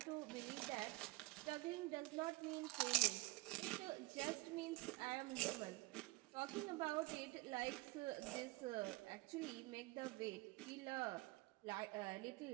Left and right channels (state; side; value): quieter; left; 21.2 dB